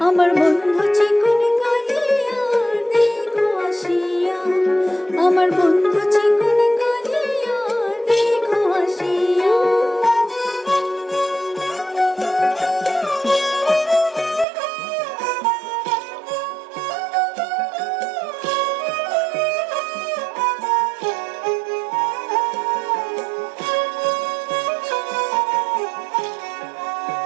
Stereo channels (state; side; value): drops out; left; at 14.5 s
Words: আমার বন্ধু চিকনি কালিয়া দেখো আসিয়া, আমার বন্ধু চিকনি কালিয়া দেখো আসিয়া।